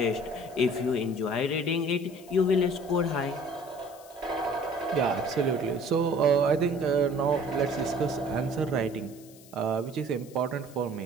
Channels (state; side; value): noise; left; hiss, 23 dB below the sound